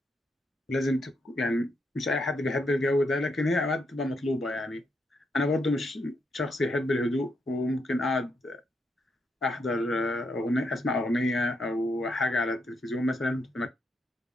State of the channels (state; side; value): normal; both; correlation 0.79